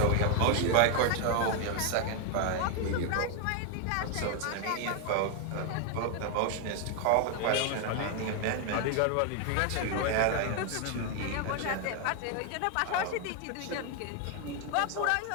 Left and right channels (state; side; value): different; both; correlation 0.01